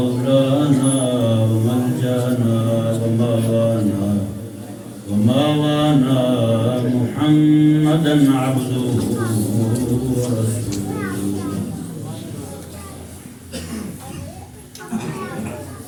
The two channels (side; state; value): both; identical; correlation 1.00